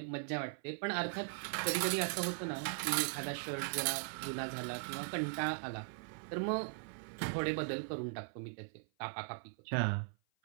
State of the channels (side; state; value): left; silent; 52 dB below the other